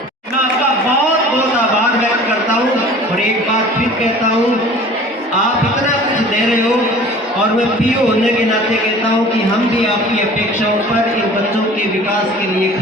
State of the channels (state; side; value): normal; both; correlation 0.45